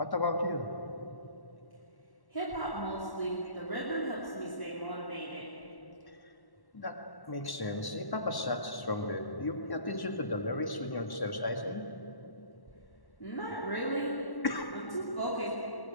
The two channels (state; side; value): late; right; 1.1 ms